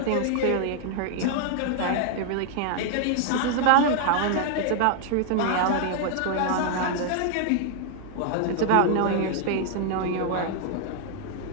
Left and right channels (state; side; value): different; both; correlation 0.00